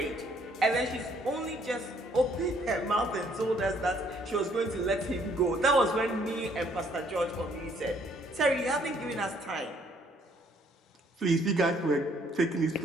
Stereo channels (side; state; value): both; normal; correlation 0.64